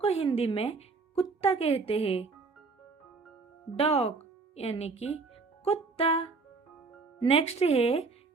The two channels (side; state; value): left; quieter; 4.2 dB